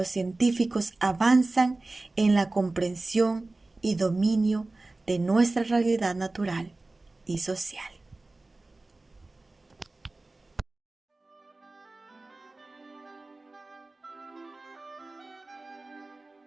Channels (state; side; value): quieter; left; 3.1 dB